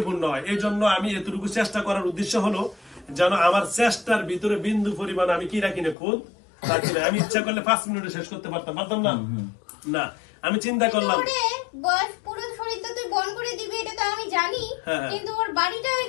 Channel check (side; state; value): right; drops out; at 6.0 s